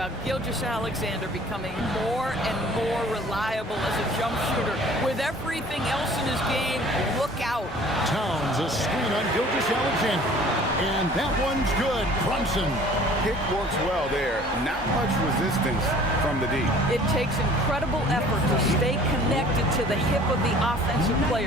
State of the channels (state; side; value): normal; both; correlation 0.50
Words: Gilgeous-Alexander becoming more and more reliable as a jump shooter. With everything else in his game, look out. Towns a screen on Gilgeous-Alexander. And that one's good. Brunson. Pick works well there. Not much resistance from the D. It takes incredible effort to stay connected to the hip of the offensive